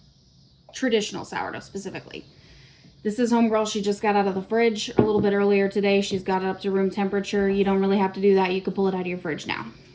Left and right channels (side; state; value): both; identical; correlation 1.00